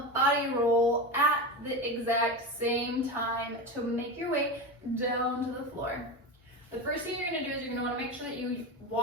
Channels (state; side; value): normal; both; correlation 0.21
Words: body roll at the exact same time to make your way down to the floor. The first thing you're going to do is you're going to want to make sure that you